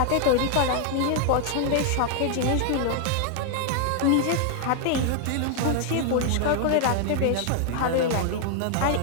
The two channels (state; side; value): different; both; correlation 0.00